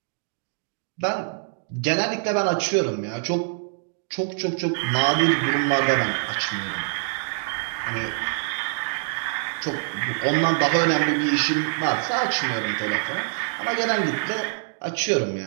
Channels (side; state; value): left; silent; digital silence